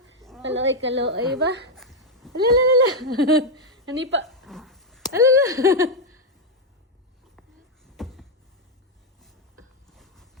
Kaloy, kaloy ba? Alalala. Hani pa. Alala.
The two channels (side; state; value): both; normal; correlation 0.01